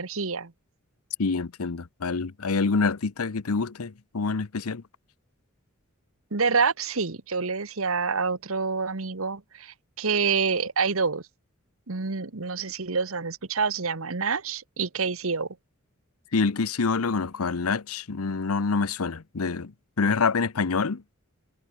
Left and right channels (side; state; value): both; normal; correlation -0.10